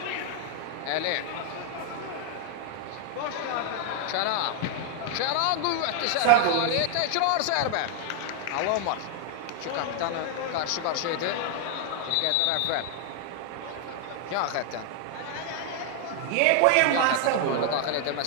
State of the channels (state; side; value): different; both; correlation 0.00